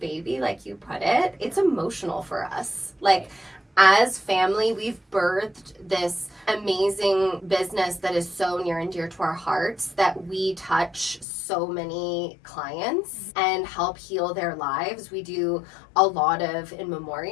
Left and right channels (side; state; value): right; drops out; at 11.2 s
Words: baby, like you put it. It's emotional for us. Like, as family, we've birthed this amazing business that is so near and dear to our hearts, that we touch so many clients and help heal their lives. We do a lot of in